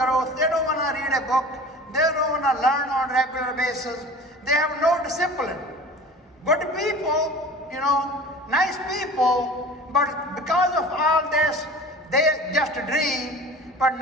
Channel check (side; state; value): both; normal; correlation 0.40